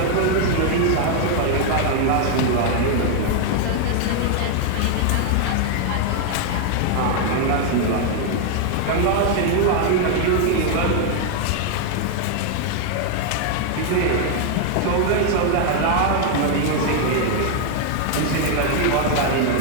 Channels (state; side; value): different; both; correlation 0.00